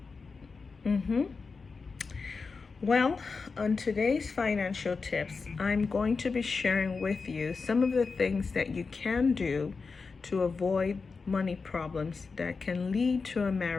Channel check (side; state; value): right; quieter; 4.6 dB